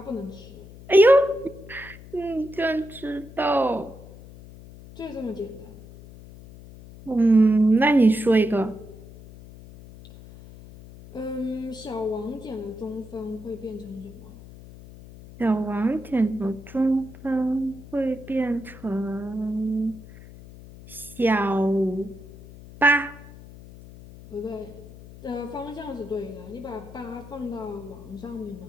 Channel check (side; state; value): left; noise; hum, 18 dB below the sound